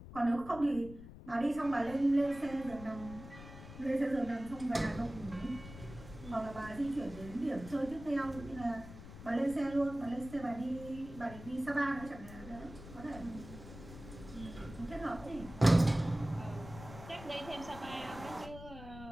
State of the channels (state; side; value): noise; left; rumble, 14 dB below the sound